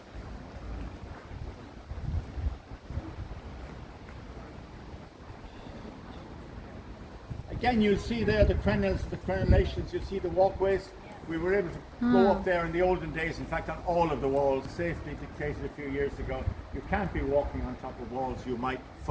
Again, you'll see there the crenellations, you'll see the walkways. We were able to go up there in the olden days, in fact on all of the walls, safety dictated a few years ago, you can't be walking on top of walls, you might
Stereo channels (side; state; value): both; identical; correlation 1.00